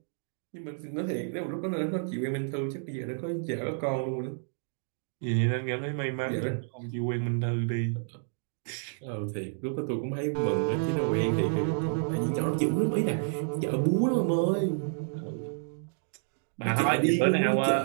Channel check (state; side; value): silent; left; digital silence